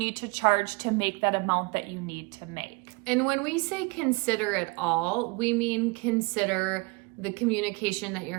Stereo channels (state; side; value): quieter; left; 28.0 dB